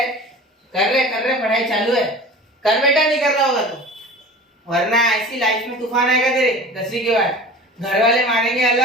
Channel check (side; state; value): both; normal; correlation 0.39